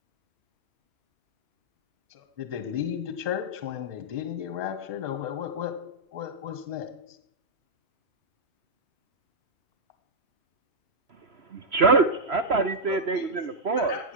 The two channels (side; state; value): left; late; 3.0 ms